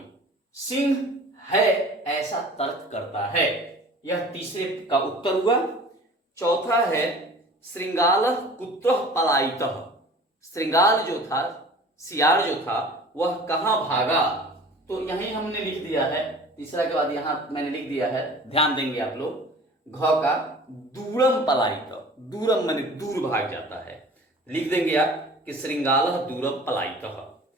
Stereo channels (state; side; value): normal; both; correlation 0.44